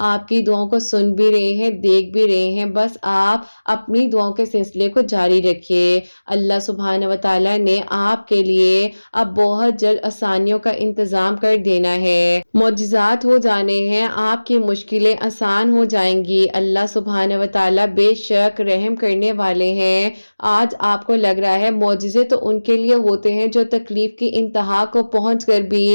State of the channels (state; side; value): inverted; both; correlation -1.00